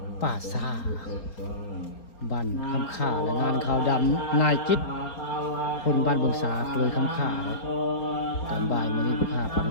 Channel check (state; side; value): late; right; 4.3 ms